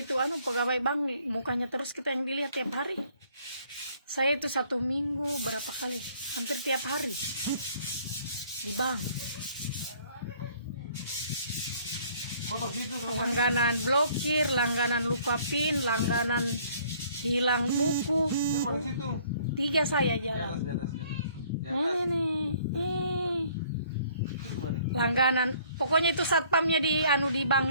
pegawai bank, mukanya terus kita yang dilihat tiap hari. Saya itu 1 minggu berapa kali, hampir tiap hari di bank. Kotor situ terus. Langganan blokir, langganan lupa PIN, langganan hilang buku. Di situ. 3 saya Di jalan. atas, di atas, di atas. Di atas. Ini. Itu kemarin. Langganan. Pokoknya itu satpamnya di di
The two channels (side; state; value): both; inverted; correlation -0.59